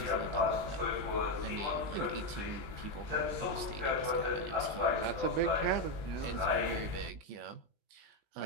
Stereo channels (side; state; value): left; late; 20 ms